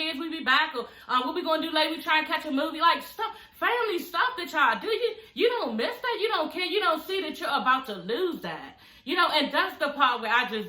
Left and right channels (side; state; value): both; identical; correlation 1.00